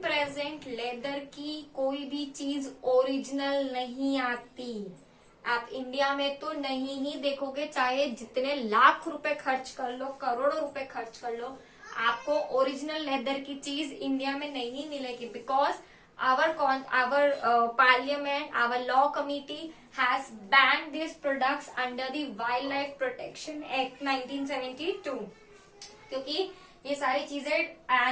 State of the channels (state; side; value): identical; both; correlation 1.00